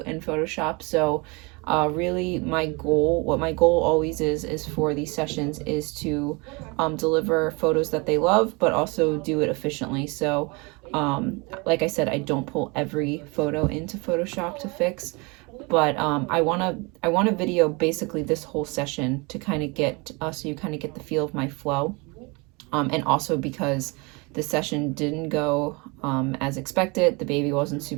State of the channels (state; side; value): quieter; left; 28.4 dB